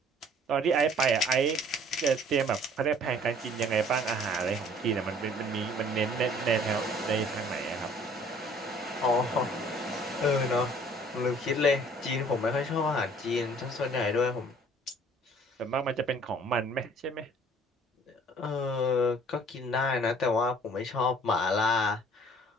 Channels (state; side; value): normal; both; correlation 0.54